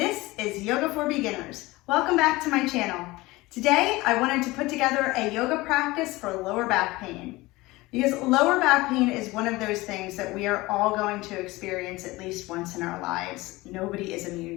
is Yoga for Beginners. Welcome back to my channel. Today, I wanted to put together a yoga practice for lower back pain. Because lower back pain is one of those things that we are all going to experience at least once in our lives. Nobody is immune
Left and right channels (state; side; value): quieter; right; 20.6 dB